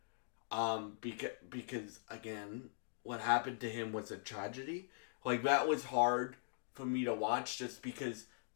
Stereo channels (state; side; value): silent; right; digital silence